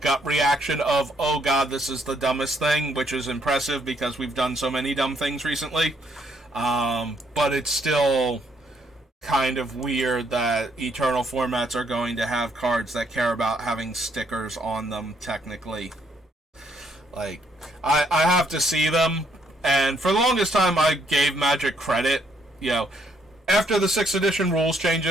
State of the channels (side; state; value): both; normal; correlation 0.71